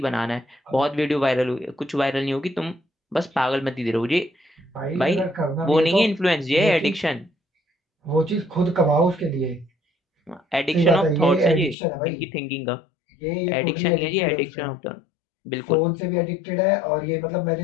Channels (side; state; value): right; drops out; at 11.8 s